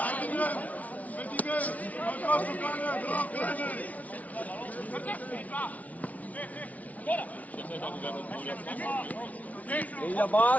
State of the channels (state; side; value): late; right; 0.070 ms